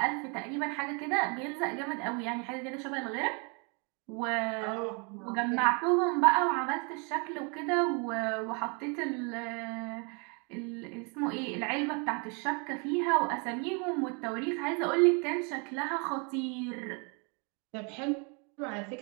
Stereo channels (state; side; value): quieter; left; 34.2 dB